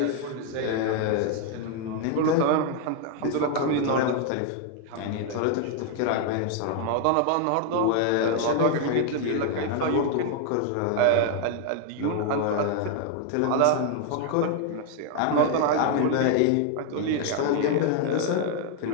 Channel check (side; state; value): both; different; correlation 0.00